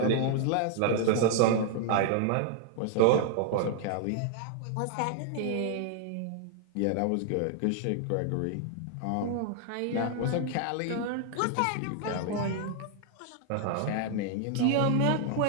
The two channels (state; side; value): different; both; correlation 0.00